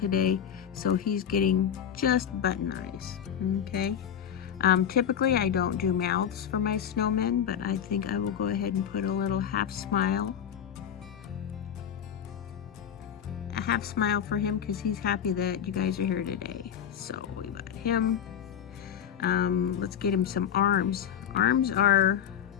so he's getting just button eyes, okay? Typically I don't do mouths for my snowmen, but I think I will go ahead and put a little half smile. A half smile for him because he's happy that you guys are here today. So we got him. Let's get him some arms. Arms are,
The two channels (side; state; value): right; quieter; 8.9 dB